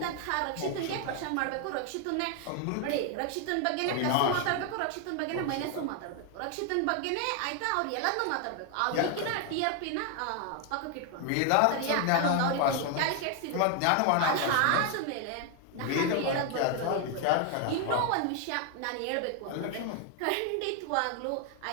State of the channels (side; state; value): both; different; correlation 0.00